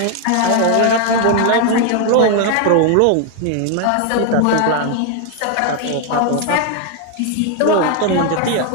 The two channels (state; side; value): different; both; correlation 0.00